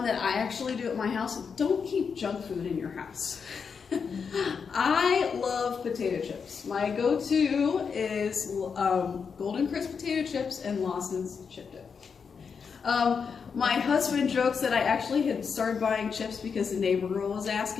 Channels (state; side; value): quieter; right; 6.0 dB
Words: that I actually do at my house. Don't keep junk food in your house. I love potato chips. My go-to is Golden Crisp potato chips and Lawson's chip dip. My husband jokes that I actually had started buying chips because the neighbor girl was